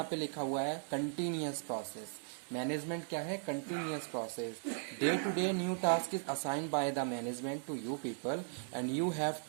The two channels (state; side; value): silent; left; digital silence